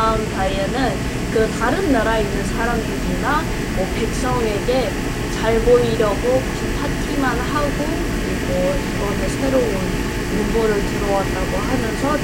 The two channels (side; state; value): both; identical; correlation 1.00